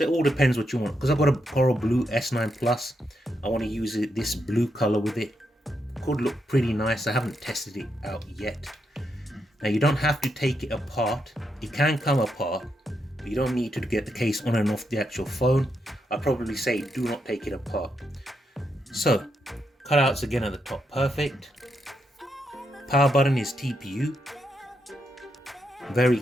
it all depends what you want. Because I've got a coral blue S9 Plus, I want to use this blue color with it. Could look pretty nice. I haven't tested it out yet. Now you don't have to take it apart. It can come apart, but you don't need to get the case on and off the actual phone. I'd probably say do not take it apart. So cutouts again at the top, perfect. Power button is TPU. Very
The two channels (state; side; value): normal; both; correlation 0.82